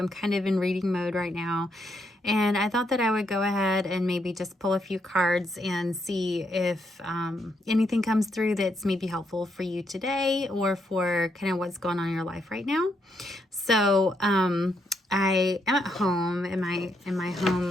kind of in reading mode right now, and I thought that I would go ahead and maybe just pull a few cards and see if anything comes through that's maybe helpful for you today or for kind of what's going on in your life right now. So I am at home in my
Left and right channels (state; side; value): normal; both; correlation 0.77